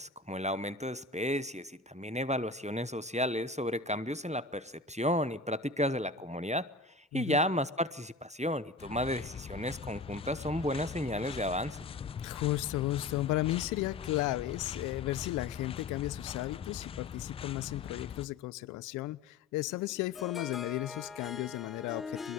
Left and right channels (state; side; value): quieter; right; 3.9 dB